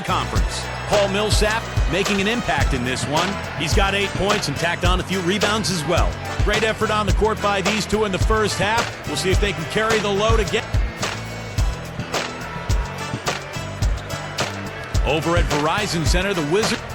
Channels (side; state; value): both; identical; correlation 1.00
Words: conference. Paul Millsap making an impact in this one. He's got 8 points and tacked on a few rebounds as well. Great effort on the court by these two in the first half. We'll see if they can carry the load again. Over at Verizon Center, the Wizards.